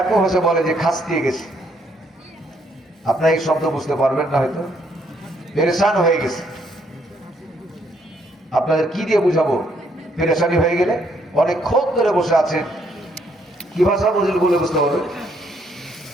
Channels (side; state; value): both; normal; correlation 0.71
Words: ভাষা বলে যে খাস দিয়ে গেছে। আপনারা এই শব্দ বুঝতে পারবেন না, হয়তো পেরেশান হয়ে গেছে। আপনাদের কি দিয়ে বুঝাবো? পেরেশানি হয়ে গেলে অনেকক্ষণ ধরে বসে আছেন, কি ভাষা বুঝলে বলে বুঝতে পারবেন?